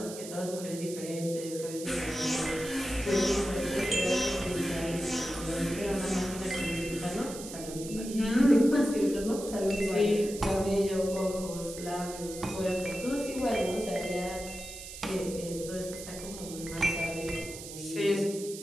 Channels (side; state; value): right; noise; hiss, 12 dB below the sound